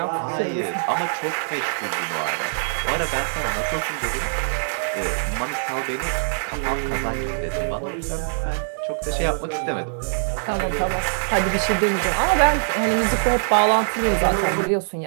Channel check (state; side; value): silent; left; digital silence